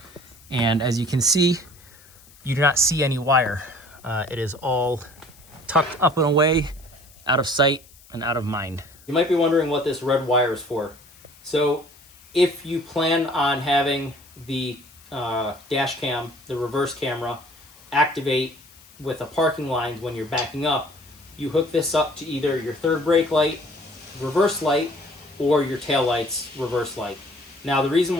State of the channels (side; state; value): left; noise; hiss, 25 dB below the sound